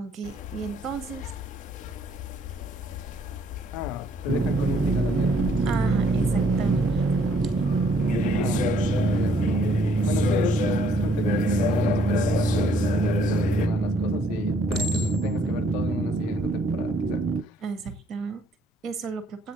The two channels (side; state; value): both; normal; correlation 0.65